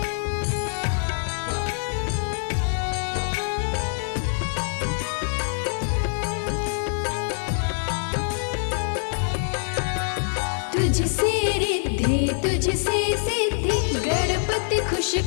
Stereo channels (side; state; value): right; silent; digital silence